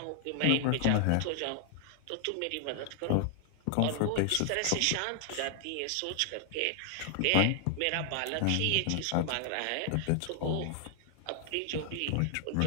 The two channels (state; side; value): different; both; correlation 0.00